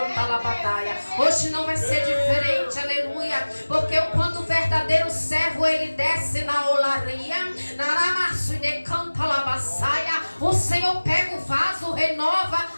la batalha. Hoje não vai ser diferente, aleluia, porque quando o verdadeiro servo ele desce na olaria, naramaçu e decanta la baçaia, o Senhor pega o vaso, renova,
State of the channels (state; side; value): inverted; both; correlation -1.00